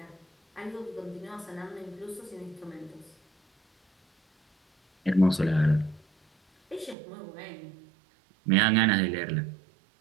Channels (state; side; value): drops out; left; at 7.0 s